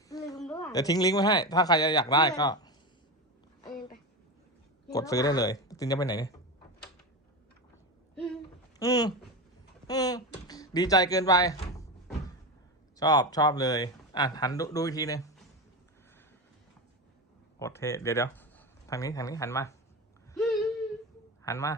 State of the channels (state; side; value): normal; both; correlation 0.19